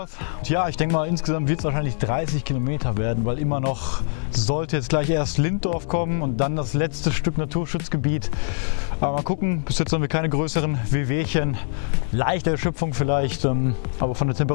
Und ja, ich denke mal insgesamt wird es wahrscheinlich 30 Kilometer werden, weil immer noch sollte jetzt gleich erst Linddorf kommen und dann das letzte Stück Naturschutzgebiet. Aber mal gucken, bis jetzt haben wir keine größeren Wehwehchen. Leichte Erschöpfung vielleicht, aber von der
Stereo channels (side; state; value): right; silent; 63 dB below the other